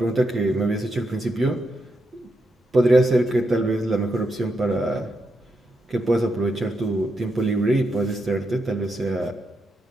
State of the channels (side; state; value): both; normal; correlation 0.83